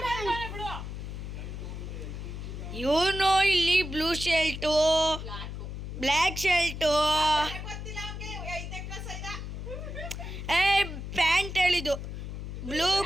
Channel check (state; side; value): noise; left; hum, 7 dB below the sound